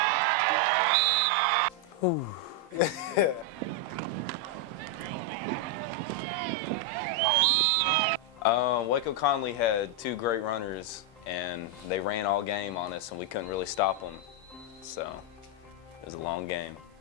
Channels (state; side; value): normal; both; correlation 0.01